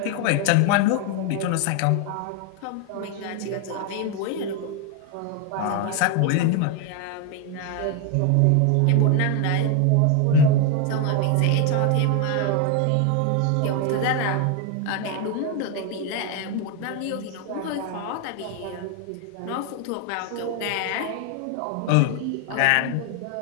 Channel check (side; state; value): both; different; correlation 0.01